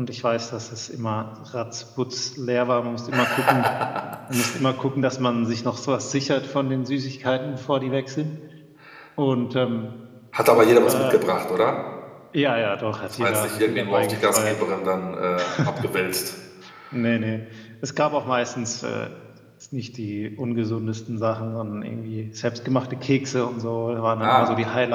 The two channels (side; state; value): both; identical; correlation 1.00